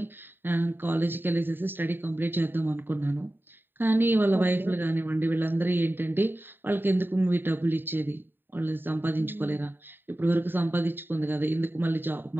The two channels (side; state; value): left; late; 0.095 ms